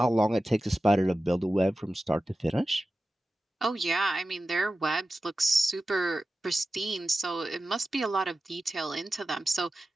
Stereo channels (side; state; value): both; normal; correlation 0.94